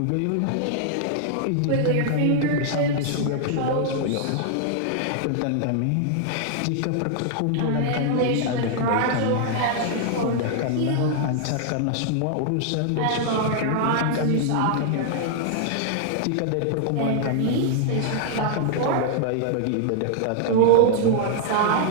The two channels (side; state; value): both; different; correlation -0.01